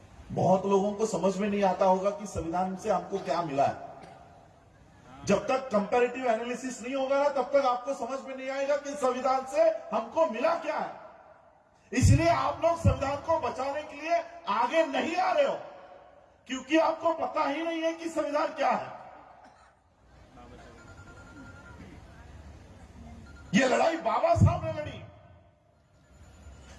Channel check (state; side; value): identical; both; correlation 1.00